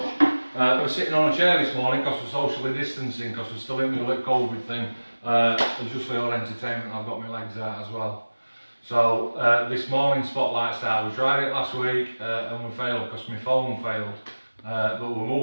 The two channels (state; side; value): inverted; both; correlation -1.00